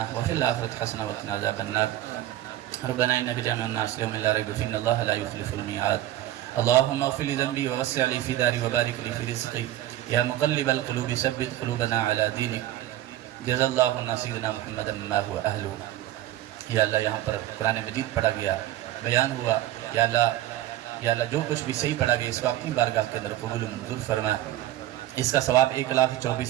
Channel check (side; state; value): left; quieter; 14.0 dB